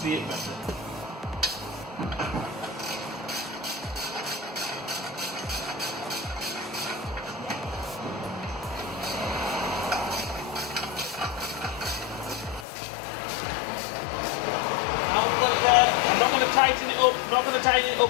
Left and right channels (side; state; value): right; drops out; at 12.7 s